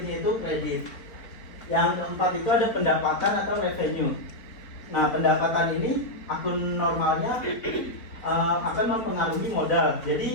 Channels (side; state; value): right; late; 4.2 ms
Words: itu kredit. Yang keempat itu ada pendapatan atau revenue. Nah, pendapatan ini akun normalnya akan mempengaruhi modal.